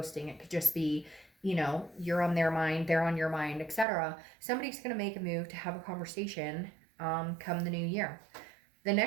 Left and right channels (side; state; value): left; drops out; at 3.9 s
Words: It could just be, you're on their mind, they're on your mind, etc. Somebody's going to make a move to have a conversation come the new year. The